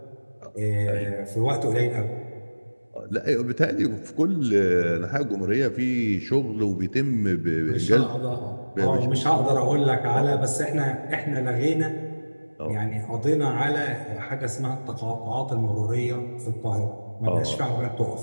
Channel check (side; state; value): both; inverted; correlation -1.00